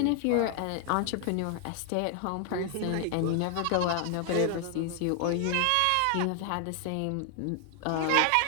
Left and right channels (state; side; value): different; both; correlation 0.00